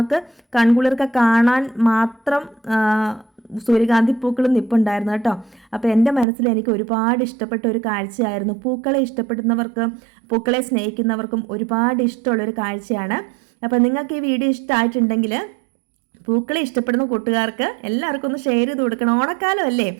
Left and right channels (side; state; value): left; drops out; at 6.2 s